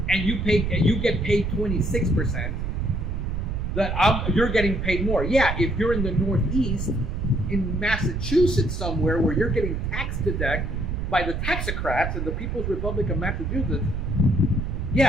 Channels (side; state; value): right; noise; rumble, 2 dB below the sound